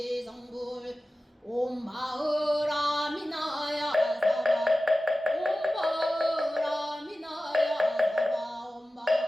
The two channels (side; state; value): both; normal; correlation 0.95